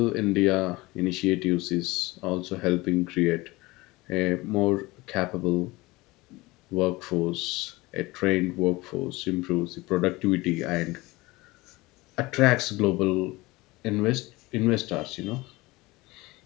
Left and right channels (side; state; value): right; quieter; 21.4 dB